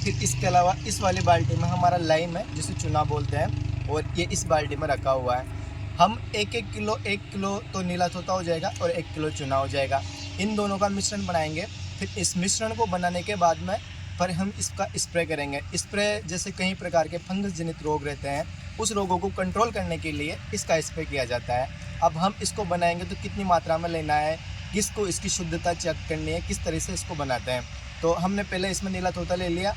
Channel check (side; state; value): both; identical; correlation 1.00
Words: इसके अलावा इस वाली बाल्टी में हमारा लाइम है, जिसे चूना बोलते हैं, और ये इस बाल्टी में रखा हुआ है। हम एक किलो तो नीला तोता हो जाएगा और 1 किलो चूना हो जाएगा। इन दोनों का मिश्रण बनाएंगे। फिर इस मिश्रण को बनाने के बाद में पर हम इसका स्प्रे करेंगे। स्प्रे जैसे कई प्रकार के फंगस जनित रोग रहते हैं, उस रोगों को कंट्रोल करने के लिए इसका स्प्रे किया जाता है। अब हम इसको बनाएंगे तो कितनी मात्रा में लेना है, किसको इसकी शुद्धता चेक करनी है, किस तरह से इसको बनाते हैं। तो हमने पहले इसमें नीला तोता ले लिया,